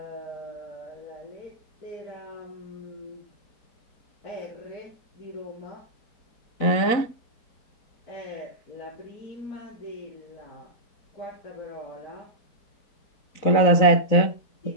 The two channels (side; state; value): right; late; 4.0 ms